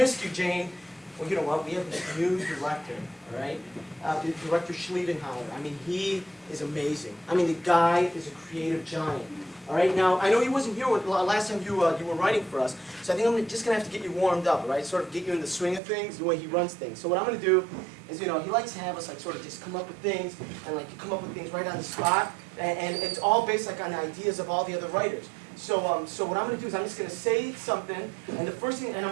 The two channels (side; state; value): left; drops out; at 15.8 s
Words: you, Jane. Well, you know what? We have this new director, all right? Director Schliedenhauer. I mean, he is amazing. I mean, the guy is a creative giant. All right, now, I know he wasn't here last time you were writing for us, so I think I'm just going to have to get you warmed up, all right? Sort of get you in the swing of things, the way he runs things. So what I'm going to do is, you know, he likes to have us, like, sort of just come up with things, and, like, you come up with things right on the spot, and it's all based, like, on ideas of all the other writers. So what I'm going to do is I'm just going to say something, and the first thing, and